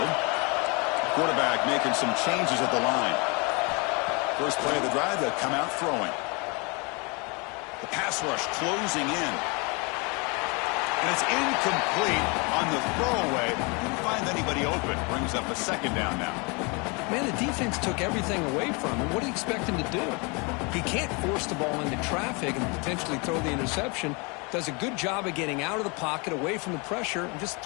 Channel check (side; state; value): right; quieter; 30.5 dB